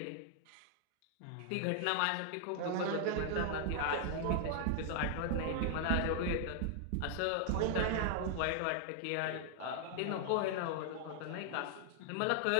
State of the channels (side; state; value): both; different; correlation 0.00